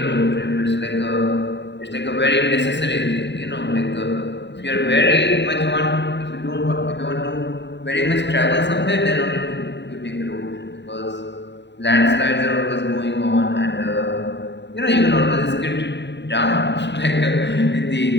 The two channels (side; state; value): right; late; 0.51 ms